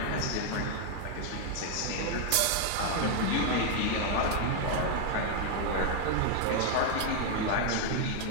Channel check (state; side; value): different; both; correlation 0.00